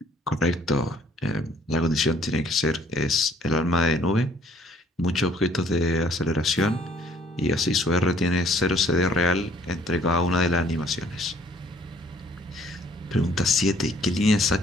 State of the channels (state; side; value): normal; both; correlation 0.60